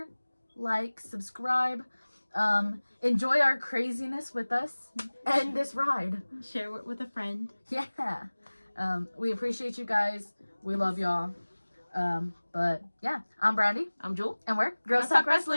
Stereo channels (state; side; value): inverted; both; correlation -1.00